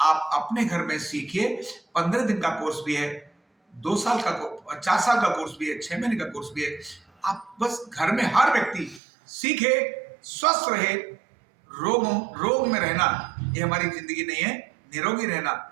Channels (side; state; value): left; drops out; at 9.0 s